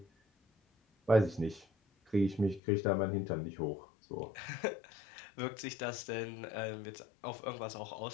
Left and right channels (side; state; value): right; drops out; at 2.6 s